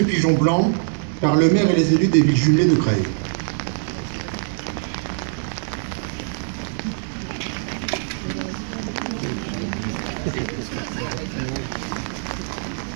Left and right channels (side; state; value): left; silent; digital silence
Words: pigeons blancs par le maire et les élus des villes jumelées de Creil.